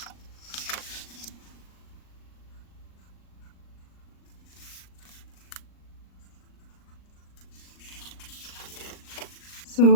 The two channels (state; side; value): late; right; 39 ms